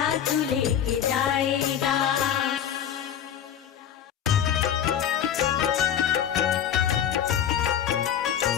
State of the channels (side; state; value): right; quieter; 9.5 dB